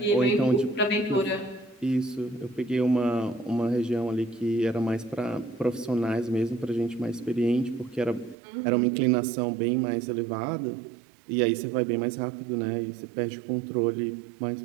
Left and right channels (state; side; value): drops out; left; at 8.3 s